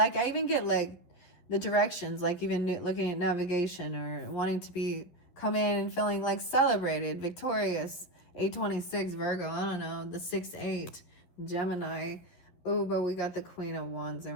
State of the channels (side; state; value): right; late; 12 ms